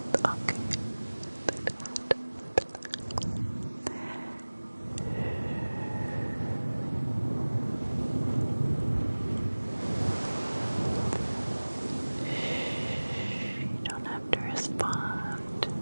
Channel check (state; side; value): inverted; both; correlation -1.00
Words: Okay. You don't have to respond.